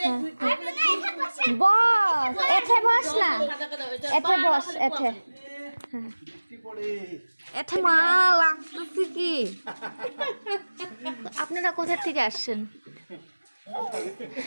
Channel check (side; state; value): both; inverted; correlation -1.00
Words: বস, এঠে বস না, এঠে বস, এঠে। হ্যাঁ এঠে মা লাগতেছে কি? আপনারা কোথা থেকে আসছেন?